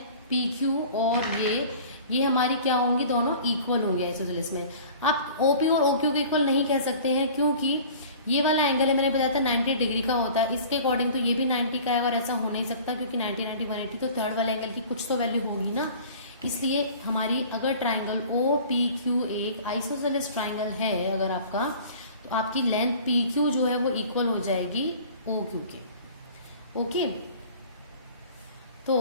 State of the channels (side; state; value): both; inverted; correlation -0.44